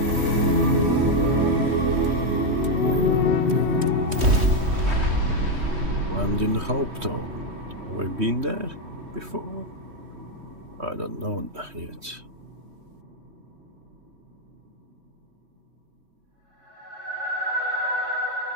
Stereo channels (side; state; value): left; late; 3.2 ms